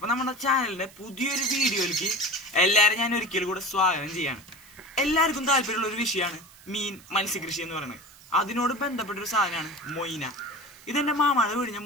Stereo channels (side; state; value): right; noise; hiss, 23 dB below the sound